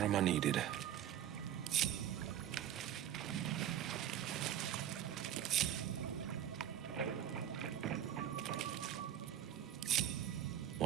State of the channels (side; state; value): left; quieter; 10.7 dB